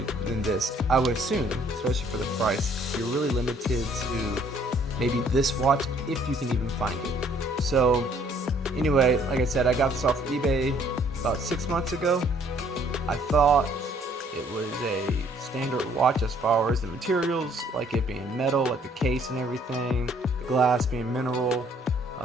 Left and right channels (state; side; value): normal; both; correlation 0.61